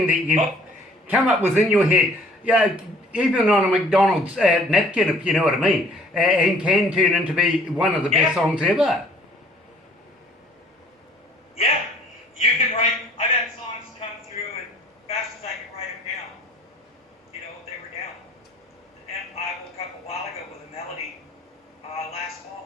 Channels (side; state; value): both; normal; correlation 0.55